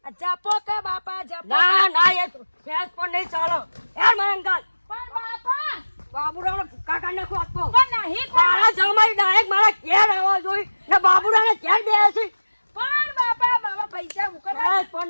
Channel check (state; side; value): inverted; both; correlation -1.00